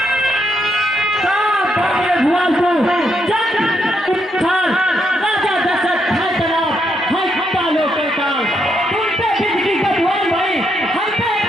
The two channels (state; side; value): normal; both; correlation 0.78